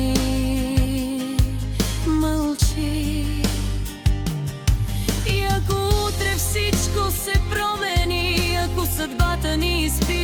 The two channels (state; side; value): identical; both; correlation 1.00